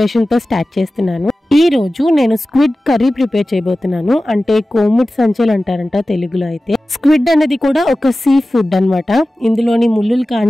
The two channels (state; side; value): normal; both; correlation 0.96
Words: తో స్టార్ట్ చేస్తున్నాను. ఈ రోజు నేను స్క్విడ్ కర్రీ ప్రిపేర్ చేయబోతున్నాను. అంటే కోముట్ సంచెలు అంటారంట తెలుగులో. అయితే స్క్విడ్ అనేది కూడా ఒక సీ ఫుడ్ అన్నమాట. ఇందులోని ముళ్ళులు